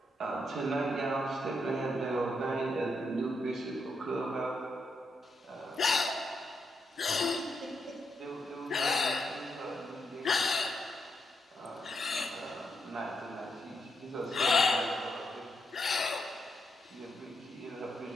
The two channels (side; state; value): both; normal; correlation 0.81